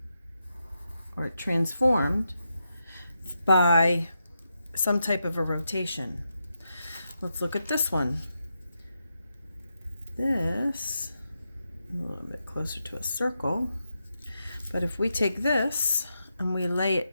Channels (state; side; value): inverted; both; correlation -0.86